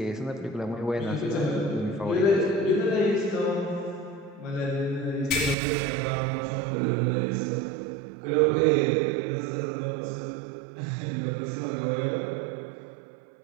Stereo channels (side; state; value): left; drops out; at 5.6 s